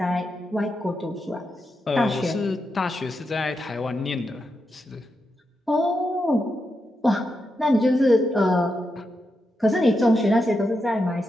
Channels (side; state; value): both; normal; correlation 0.86